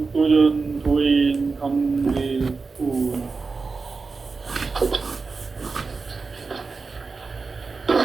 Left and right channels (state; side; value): quieter; left; 4.4 dB